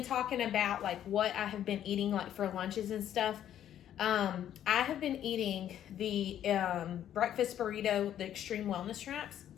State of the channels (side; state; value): right; quieter; 10.8 dB